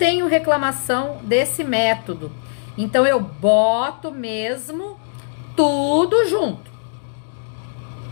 reclamação desse método. Então, eu boto mesmo tudo junto.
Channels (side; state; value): right; silent; digital silence